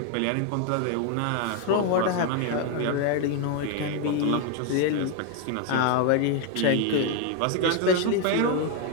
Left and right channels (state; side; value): different; both; correlation 0.01